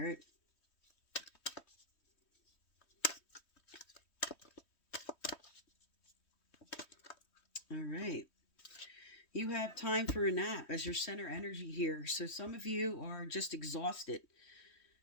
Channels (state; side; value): late; right; 3.1 ms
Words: All right. You have time for a nap as your center energy here. So some of you are just exhausted.